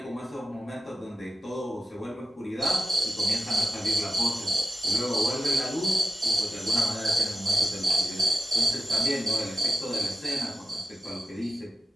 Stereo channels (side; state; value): both; normal; correlation 0.92